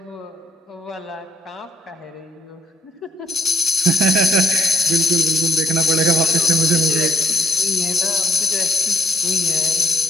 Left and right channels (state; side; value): normal; both; correlation 0.66